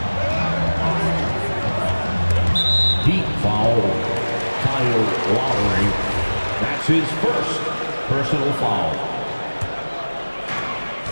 Heat foul. Kyle Lowry. That's his first personal foul.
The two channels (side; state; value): both; inverted; correlation -1.00